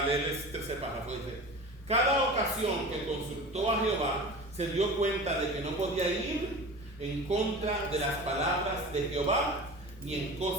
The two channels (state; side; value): normal; both; correlation 0.34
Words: leer el tercer párrafo, dice, cada ocasión que consultó a Jehová, se dio cuenta de que no podía ir en contra de las palabras de Jehová, ni en